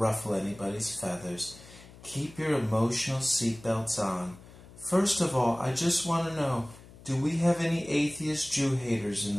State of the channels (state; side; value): noise; left; hum, 20 dB below the sound